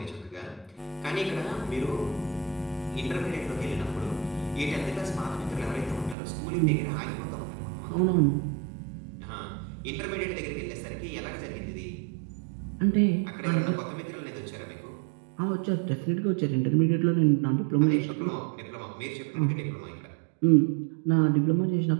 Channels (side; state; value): left; drops out; at 6.2 s